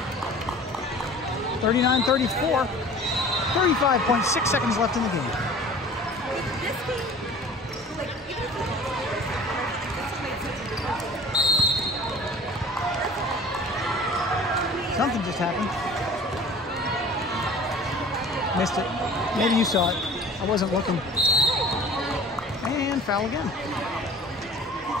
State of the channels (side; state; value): both; normal; correlation 0.44